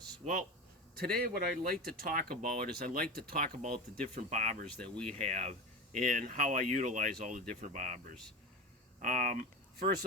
Well, today what I'd like to talk about is the different bobbers that we have and how I utilize all the different bobbers. First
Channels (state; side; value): normal; both; correlation 0.26